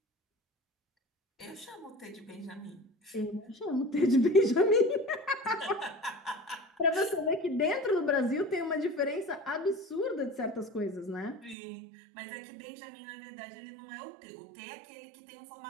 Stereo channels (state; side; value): drops out; left; at 11.6 s